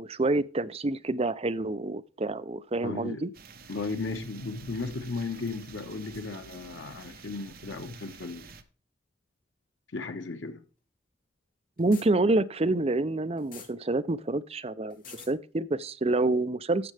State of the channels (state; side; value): normal; both; correlation 0.55